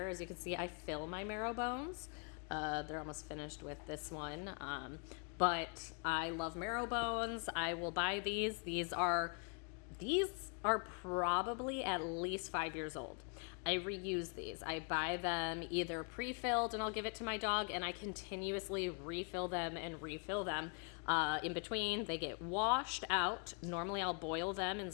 as you can see, I fill my marrow bones. They're almost finished with this one. But I love marrow bones. I will buy these. These are probably at least 5 years old. I reuse these. I buy them either pre-filled and I'll give it to my dog, and I continuously refill them and refill them. In between, they get washed out. Normally I'll boil them in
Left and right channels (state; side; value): quieter; right; 37.9 dB